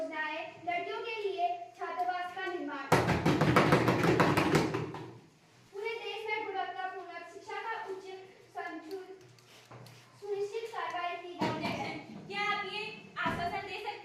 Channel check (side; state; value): both; identical; correlation 1.00